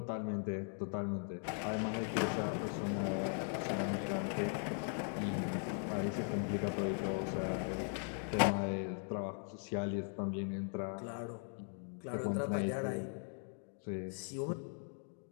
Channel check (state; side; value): silent; right; 51 dB below the other